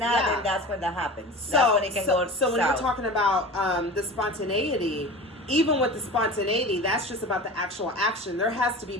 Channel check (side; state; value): both; normal; correlation 0.34